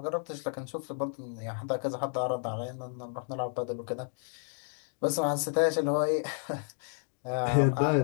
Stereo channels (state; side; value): silent; right; 57 dB below the other